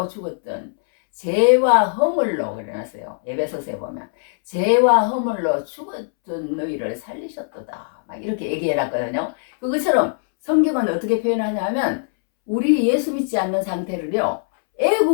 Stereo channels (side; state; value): right; silent; 65 dB below the other